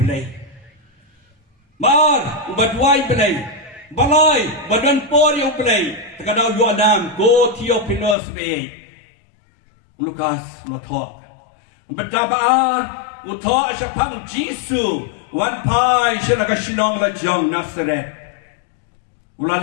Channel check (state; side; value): drops out; right; at 8.2 s